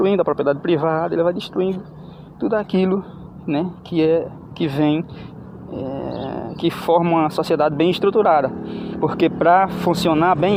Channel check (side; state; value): both; identical; correlation 1.00